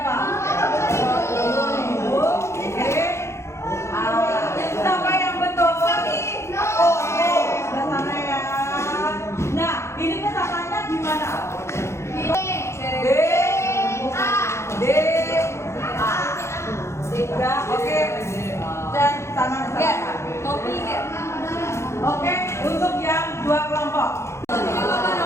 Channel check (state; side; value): late; right; 0.13 ms